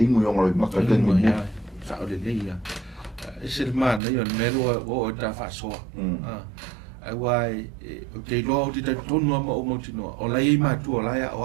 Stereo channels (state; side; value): drops out; left; at 4.0 s